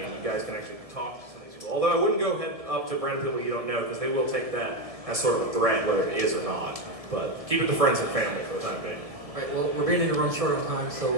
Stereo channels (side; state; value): left; late; 1.7 ms